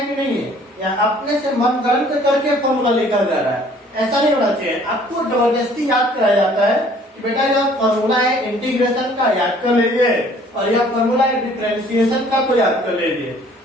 कि नहीं है, या अपने से मन गलत करके फॉर्मूला लिखा जा रहा है। ऐसा नहीं होना चाहिए। आपको जबरदस्ती याद कराया जाता है कि बेटा यह फॉर्मूला है इंटीग्रेशन का, याद कर लीजिए, और यह फॉर्मूला है डिफरेंशिएशन का, तो याद कर लीजिए।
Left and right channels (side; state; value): both; normal; correlation 0.56